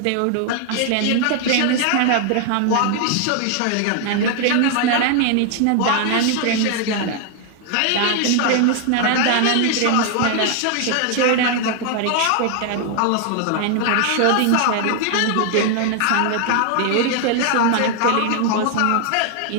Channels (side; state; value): both; different; correlation 0.00